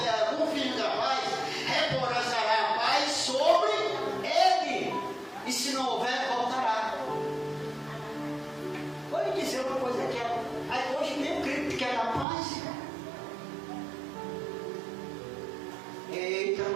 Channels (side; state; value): left; drops out; at 12.2 s